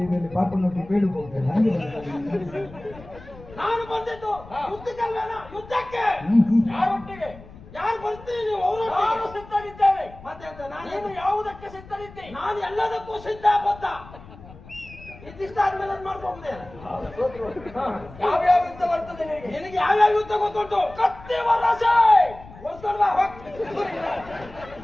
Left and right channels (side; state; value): left; noise; rumble, 19 dB below the sound